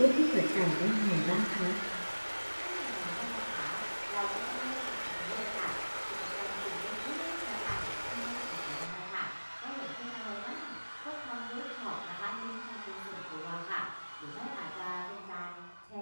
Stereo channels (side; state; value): both; inverted; correlation -1.00